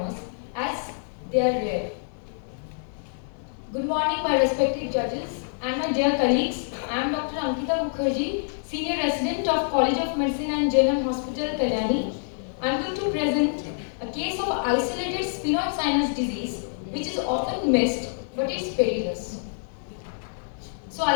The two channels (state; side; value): silent; right; 61 dB below the other